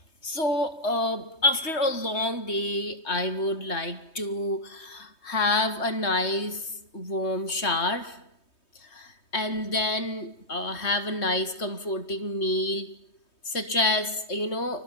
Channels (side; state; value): right; late; 3.2 ms